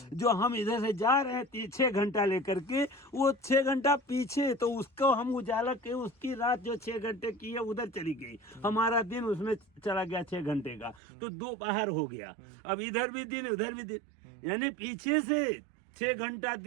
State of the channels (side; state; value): left; drops out; at 11.0 s